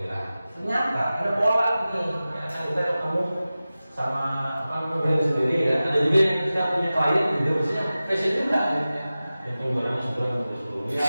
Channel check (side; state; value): both; inverted; correlation -0.96